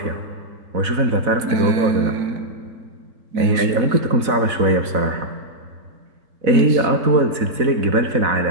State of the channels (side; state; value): left; late; 4.0 ms